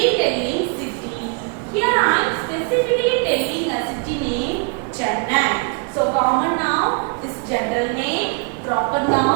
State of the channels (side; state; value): left; quieter; 36.2 dB